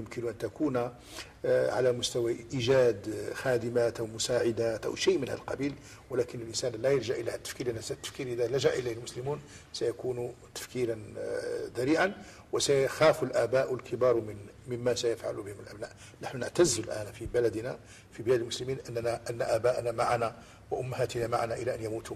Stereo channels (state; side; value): identical; both; correlation 1.00